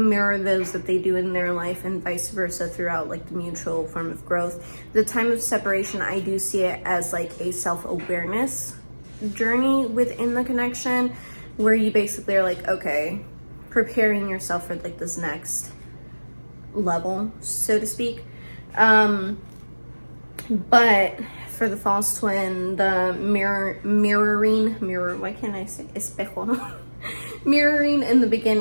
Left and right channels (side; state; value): both; inverted; correlation -1.00